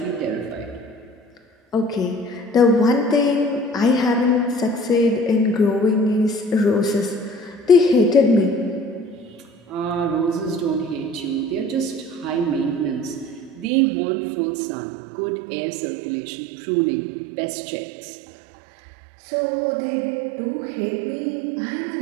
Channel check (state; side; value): drops out; left; at 13.7 s